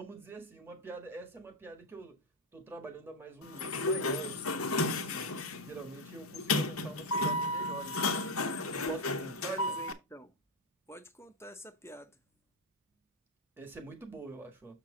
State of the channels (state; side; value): normal; both; correlation 0.04